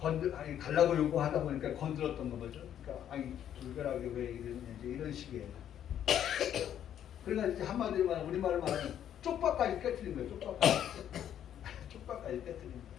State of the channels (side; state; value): right; quieter; 10.2 dB